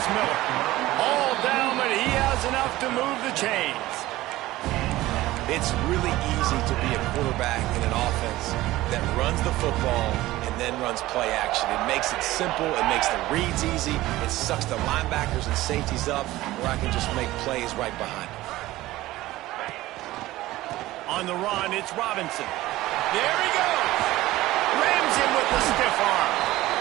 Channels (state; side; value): quieter; left; 17.0 dB